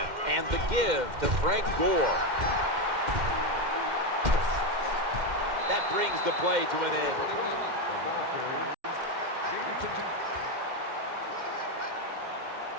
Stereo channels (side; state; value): left; late; 2.1 ms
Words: and the give to Frank Gore. That brings the play to an end. The ball carried.